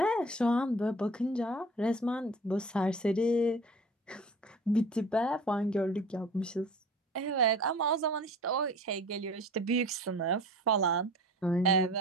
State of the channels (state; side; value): normal; both; correlation 0.42